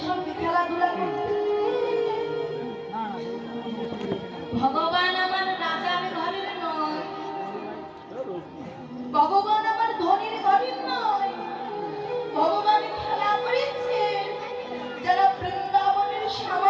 সঙ্গে খেলাধুলা করতে? ভগবান আমার রাজার ঘরের নয়, ভগবান আমার ধনীর ঘরের নয়। ভগবান খেলা করেছে যারা বৃন্দাবনের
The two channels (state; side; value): identical; both; correlation 1.00